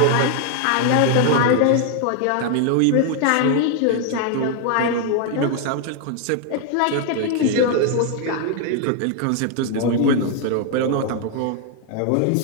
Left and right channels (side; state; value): both; different; correlation 0.00